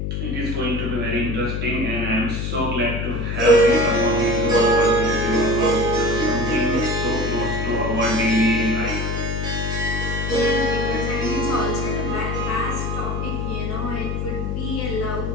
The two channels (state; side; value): noise; left; hum, 2 dB below the sound